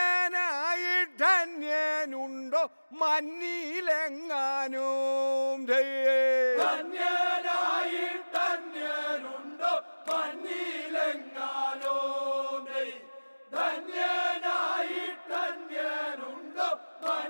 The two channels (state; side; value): inverted; both; correlation -1.00